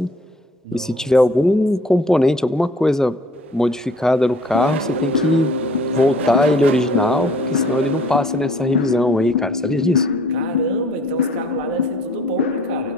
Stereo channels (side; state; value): both; normal; correlation 0.55